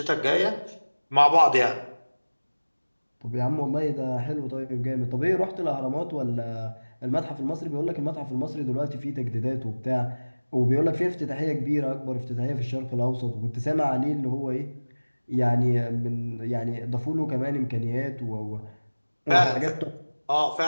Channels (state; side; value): inverted; both; correlation -1.00